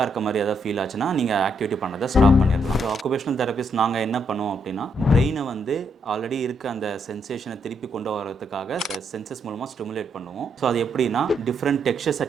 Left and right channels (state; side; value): normal; both; correlation 0.77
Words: இருக்க மாதிரி ஏதாவது ஃபீல் ஆச்சுன்னா நீங்கள் ஆக்டிவிட்டி பண்ணதை ஸ்டாப் பண்ணிடலாம். ஸோ ஆக்குபேஷனல் தெரபிஸ்ட் நாங்கள் என்ன பண்ணுவோம் அப்படின்னா, பிரெயினை வந்து ஆல்ரெடி இருக்க அந்த சென்சேஷனை திருப்பி கொண்டு வரதுக்காக சென்சஸ் மூலமாக ஸ்டிமுலேட் பண்ணுவோம். ஸோ அது எப்படின்னா, டிஃப்ரெண்ட் டெக்ஸ்சர்ஸை